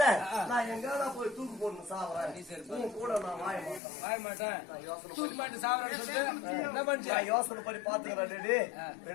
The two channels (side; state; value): right; drops out; at 3.8 s